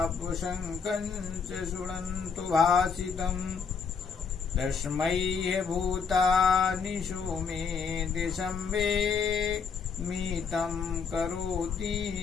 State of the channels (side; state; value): right; quieter; 5.8 dB